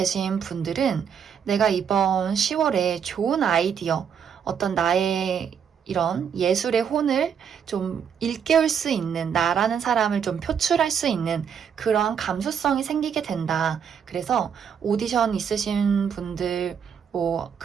분들은 내가 이번 10월에 좋은 아이디어, 어떤 나의 이런 예술의 혼을 좀 일깨울 수 있는 나라는 사람을 좀 표출할 수 있는 그러한 감수성이 생기게 된다. 그래서 오디션 있으신 분들, 뭐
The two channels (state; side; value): quieter; left; 7.6 dB